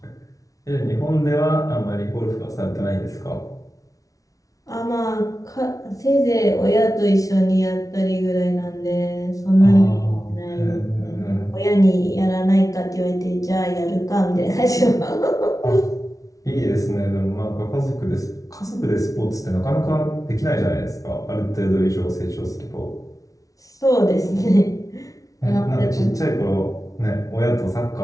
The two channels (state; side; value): late; right; 0.17 ms